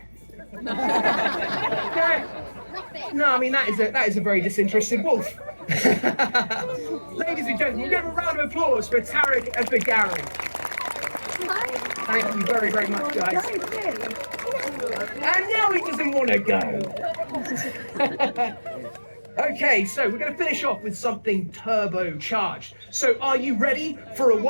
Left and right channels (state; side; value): inverted; both; correlation -1.00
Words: No, I mean that is a very disinterested wolf. Ladies and gentlemen, we'll give a round of applause for Tarek and for Gary. Thank you very, very much, guys. And now he doesn't want to go. Okay, so we're going to finish off with something turbocharged. So are you ready for a